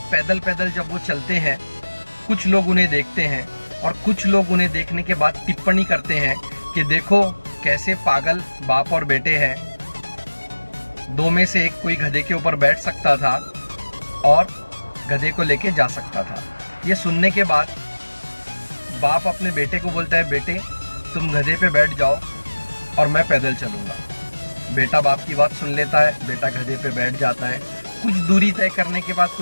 पैदल पैदल जब वो चलते हैं, कुछ लोग उन्हें देखते हैं और कुछ लोग उन्हें देखने के बाद टिप्पणी करते हैं कि देखो कैसे पागल बाप और बेटे हैं। दो में से एक कोई गधे के ऊपर बैठ सकता था और गधे को लेके जा सकता था। ये सुनने के बाद बाप अपने बेटे को बोलता है, बेटे तुम गधे पे बैठ जाओ और मैं पैदल चलूंगा। बेटा बाप की बात सुन लेता है, बेटा गधे पे बैठ जाता है। कुछ दूरी तय करने के बाद,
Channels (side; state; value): both; inverted; correlation -1.00